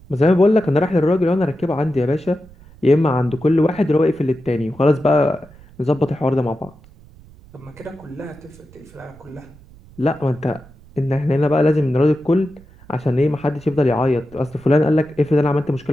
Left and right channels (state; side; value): noise; right; rumble, 24 dB below the sound